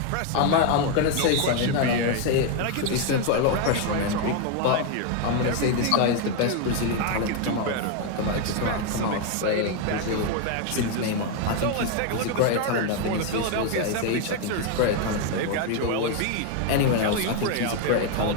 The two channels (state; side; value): different; both; correlation 0.01